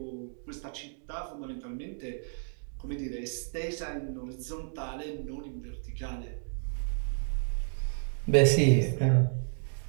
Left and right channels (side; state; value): left; silent; digital silence